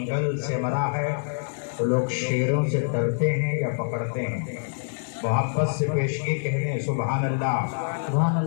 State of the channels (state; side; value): silent; right; 61 dB below the other